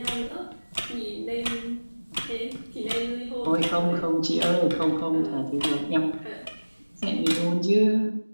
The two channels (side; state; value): both; inverted; correlation -1.00